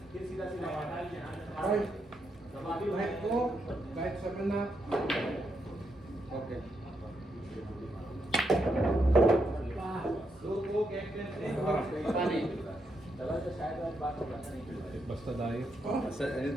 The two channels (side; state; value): both; normal; correlation 0.80